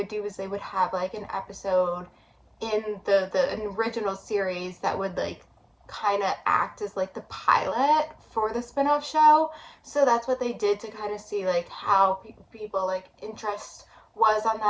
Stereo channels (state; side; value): identical; both; correlation 1.00